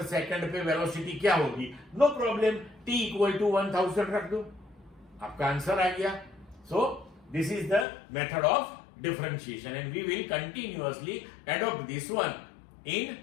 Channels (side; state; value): right; drops out; at 7.9 s